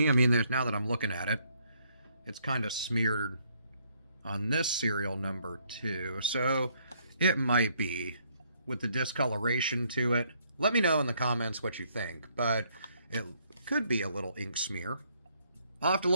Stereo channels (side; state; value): both; inverted; correlation -0.69